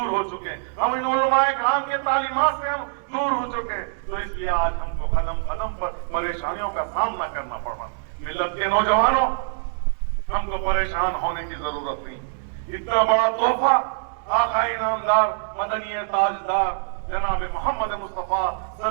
हो चुके हैं, हम इन उलमाए किराम के तालीमात से हम दूर हो चुके हैं। तो इसलिए आज हमको कदम कदम पर परेशानियों का सामना करना पड़ रहा। मिल्लत के नौजवानों, हमको परेशान होने की जरूरत नहीं। इतना बड़ा तोहफा आका इनामदार मदनी ताजदार जनाब मोहम्मद मुस्तफा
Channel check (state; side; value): silent; left; digital silence